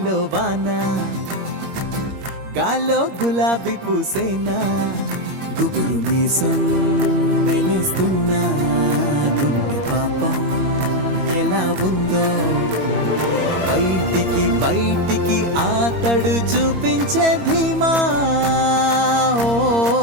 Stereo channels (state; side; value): late; left; 21 ms